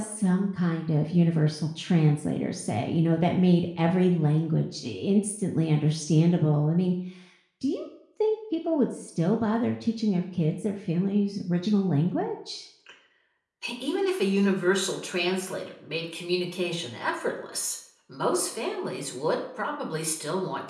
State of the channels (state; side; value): identical; both; correlation 1.00